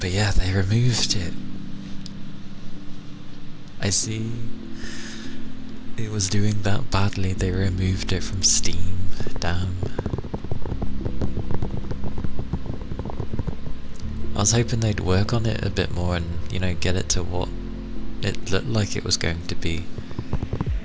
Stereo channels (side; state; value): both; identical; correlation 1.00